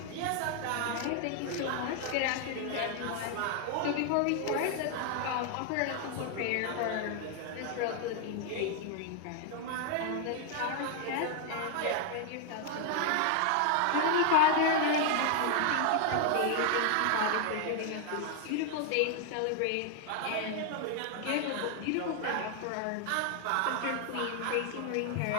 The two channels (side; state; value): both; different; correlation 0.00